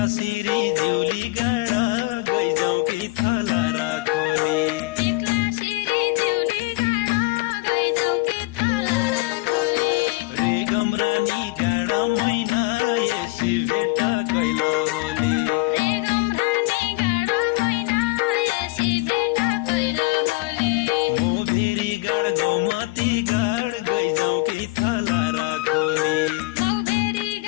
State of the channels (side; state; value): right; quieter; 21.5 dB